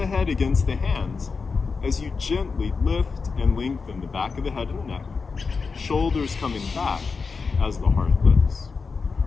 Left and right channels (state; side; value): quieter; right; 4.8 dB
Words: head against the hands as you gently lift and lengthen the back of the head and the neck. Shoulders coming back as the heart lifts.